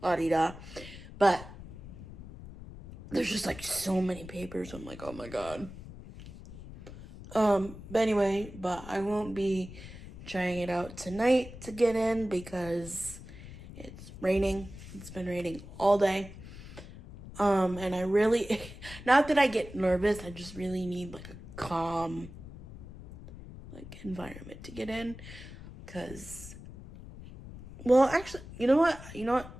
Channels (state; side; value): noise; left; rumble, 14 dB below the sound